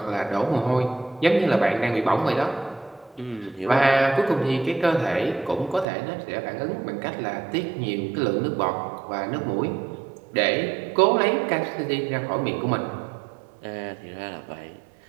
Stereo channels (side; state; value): left; drops out; at 5.9 s